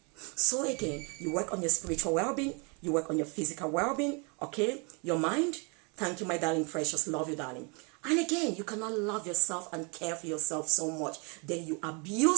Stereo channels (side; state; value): left; quieter; 33.2 dB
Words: So again, you work on your spiritual well-being, you work on your physical well-being, okay? Your mind. Thank you, my darling precious. Love you, darling. And again, you cannot love yourself and care for yourself so much. Then you